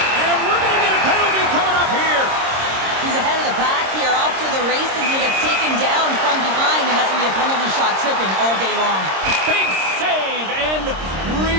And we're going to get a penalty coming up here. He's ahead of the pack here, off to the races, and he gets taken down from behind, and that's going to be a penalty shot tripping all day long. Big save, and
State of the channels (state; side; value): late; left; 26 ms